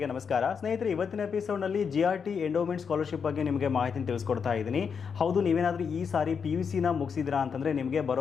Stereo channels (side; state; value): right; quieter; 6.4 dB